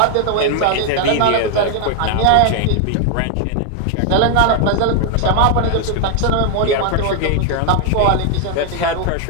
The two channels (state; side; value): different; both; correlation 0.00